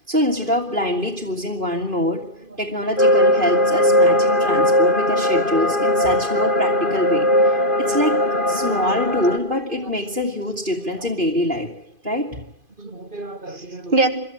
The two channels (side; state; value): left; late; 2.5 ms